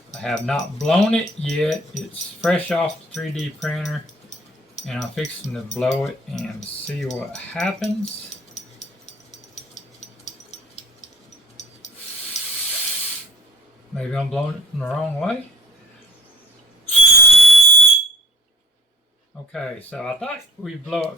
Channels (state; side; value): normal; both; correlation 0.47